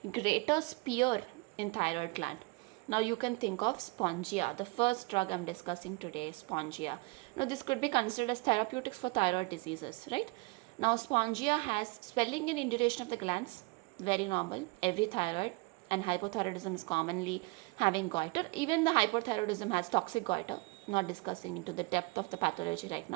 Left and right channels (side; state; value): left; quieter; 27.1 dB